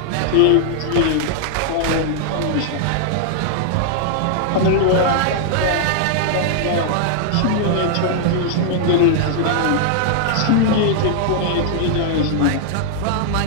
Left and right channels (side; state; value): both; different; correlation -0.01